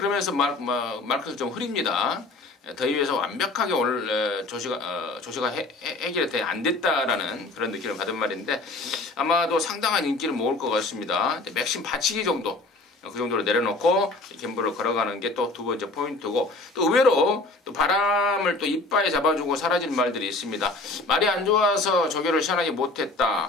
마크가 좀 흐립니다. 더위에서 완벽하게 오늘 조시가 해결이 안 됐다라는 그런 느낌을 받은 말인데, 아마도 상당한 인기를 모을 것 같습니다. 맥심 받치기 정도, 그 정도로 내려놓고 갬블을 걸어가는 게 또 두 번째 포인트고, 또 의외로 또 바람을 또 이빠에 잡아주고 사라진 말들이 있습니다. 말이 안 좋아서 조교를 시원하게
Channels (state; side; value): quieter; right; 3.2 dB